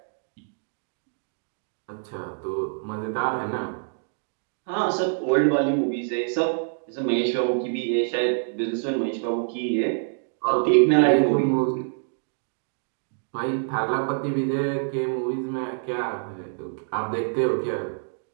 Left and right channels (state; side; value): silent; left; digital silence